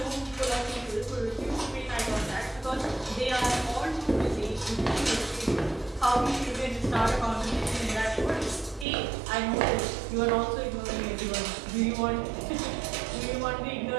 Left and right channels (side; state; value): left; drops out; at 8.8 s